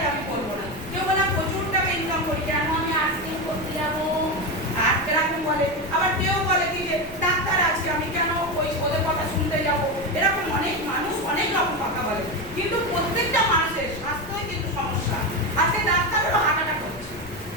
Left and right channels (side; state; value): left; noise; rumble, 18 dB below the sound